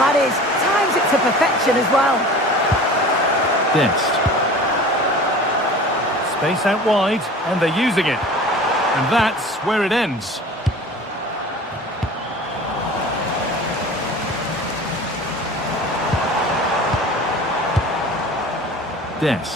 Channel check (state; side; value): normal; both; correlation 0.40